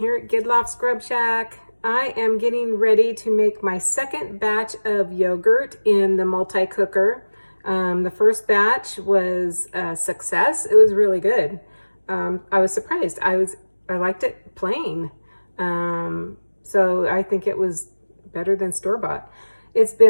at Gidloff Scrub Shack. I am getting ready to make my second batch of yogurt in the multi-cooker. The first batch was a success. It was really good. I was surprised. I liked it plain. So I think it was better than store-bought. It's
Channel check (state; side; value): inverted; both; correlation -1.00